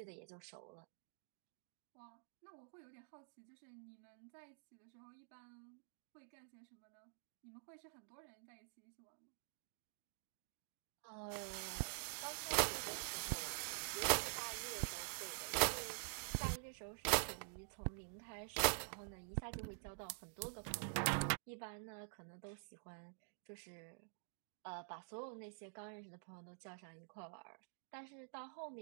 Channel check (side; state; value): left; silent; digital silence